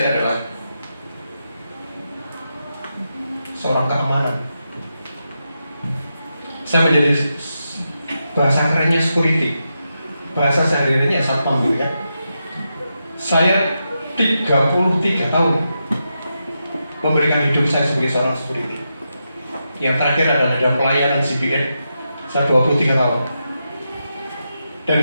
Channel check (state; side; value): inverted; both; correlation -0.87